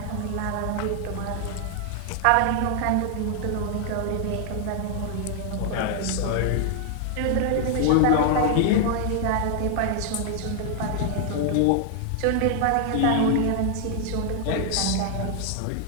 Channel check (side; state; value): both; different; correlation 0.00